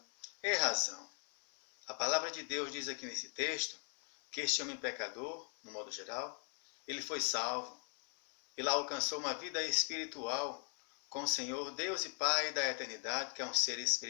é razão. A palavra de Deus diz aqui nesse texto que este homem pecador, no modo geral, ele foi salvo. Ele alcançou uma vida espiritual com o Senhor, Deus e Pai da eternidade, que é um ser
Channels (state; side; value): quieter; right; 39.6 dB